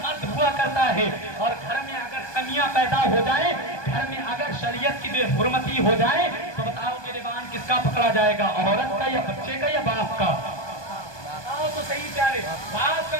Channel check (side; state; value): right; late; 1.2 ms